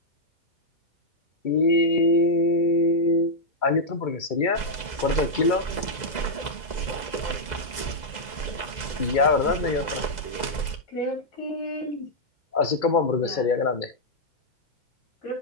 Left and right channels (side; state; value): right; late; 2.0 ms